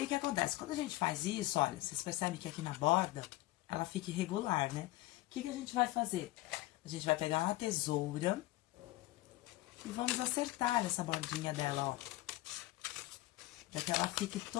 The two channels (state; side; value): quieter; right; 18.2 dB